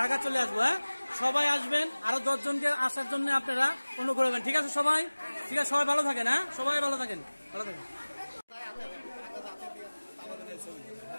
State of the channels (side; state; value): both; inverted; correlation -1.00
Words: ঢাকা চলে আসবো। হ্যাঁ সবাই আসবেন, আরো 10 জনকে আসার জন্য আপনারা অনুরোধ করবেন। ঠিক আছে সবাই, ঠিক আছে সবাই ভালো থাকেন। হ্যাঁ সবাই ভালো থাকেন, ভালো থাকেন।